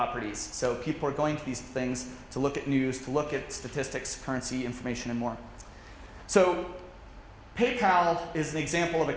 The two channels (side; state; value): both; identical; correlation 1.00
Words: So people are going to these things to look at news, to look at statistics, currency, information, and more. So PayPal is an example of a